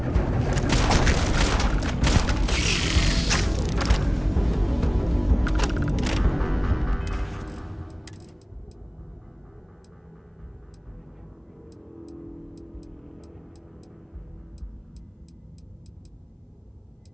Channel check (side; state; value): both; identical; correlation 1.00